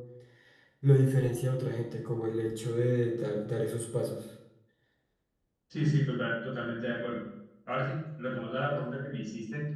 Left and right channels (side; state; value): both; identical; correlation 1.00